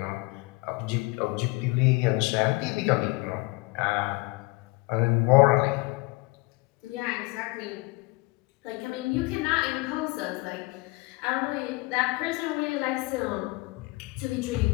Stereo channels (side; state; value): right; quieter; 24.2 dB